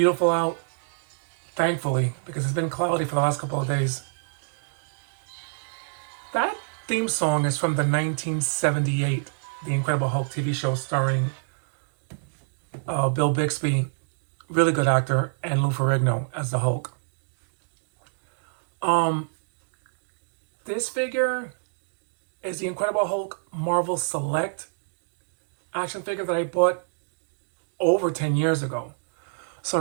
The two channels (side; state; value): left; silent; digital silence